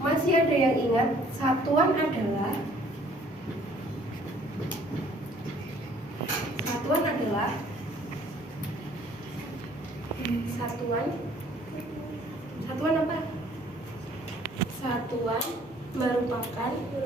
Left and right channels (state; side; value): normal; both; correlation 0.58